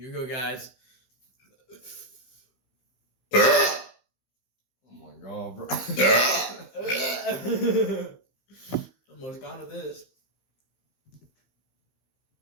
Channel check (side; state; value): right; late; 15 ms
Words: we go, guys. Oh my god, bro. Almost gone to this.